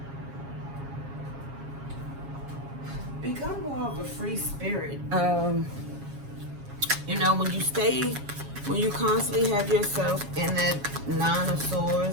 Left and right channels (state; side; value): late; left; 7.2 ms